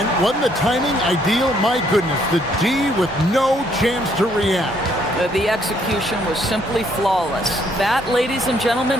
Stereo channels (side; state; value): both; normal; correlation 0.68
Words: wasn't the timing ideal? My goodness. The D with no chance to react. The execution was simply flawless. That, ladies and gentlemen,